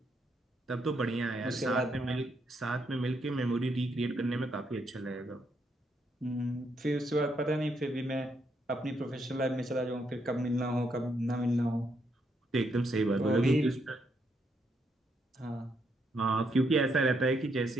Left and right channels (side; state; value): both; normal; correlation 0.77